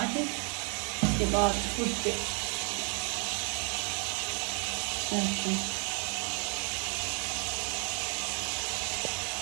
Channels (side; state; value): left; quieter; 39.4 dB